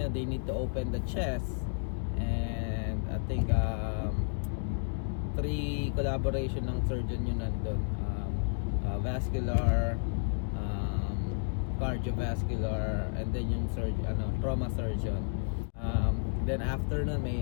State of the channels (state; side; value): silent; right; digital silence